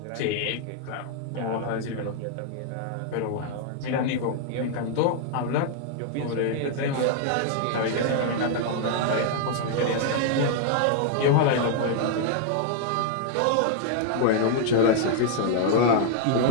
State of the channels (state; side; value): different; both; correlation -0.01